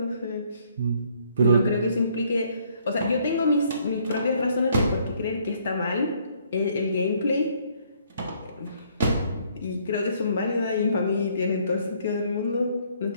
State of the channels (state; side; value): inverted; both; correlation -0.65